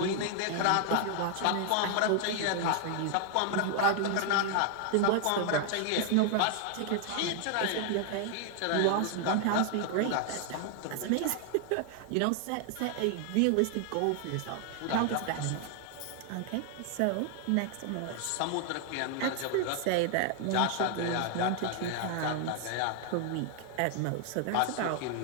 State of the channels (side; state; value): both; different; correlation 0.00